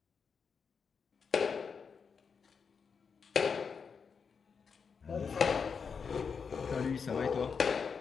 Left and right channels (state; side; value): quieter; right; 5.9 dB